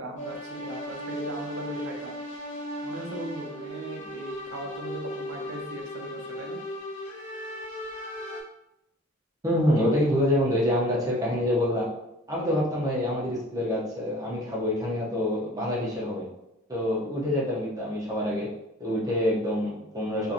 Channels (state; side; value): normal; both; correlation 0.46